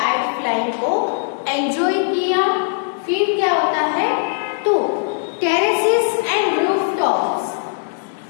फ्लाइंग को एंजॉय किया। फिर क्या होता है, तो terraces and rooftops,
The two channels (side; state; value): right; silent; digital silence